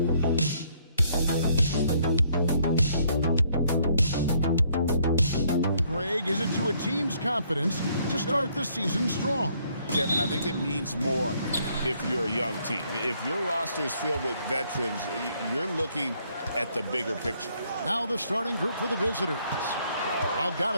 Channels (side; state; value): both; inverted; correlation -0.67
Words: is it to a team's confidence to start the season strong? Kevin, I think it means more if you're a young team. If your roster is filled with veterans, you're looking at the bigger picture. Now the starting group for the visitors.